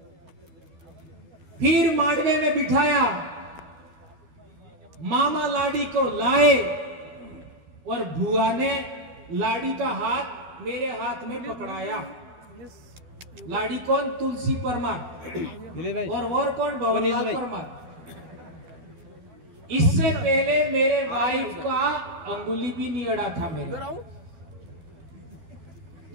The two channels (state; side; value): late; left; 12 ms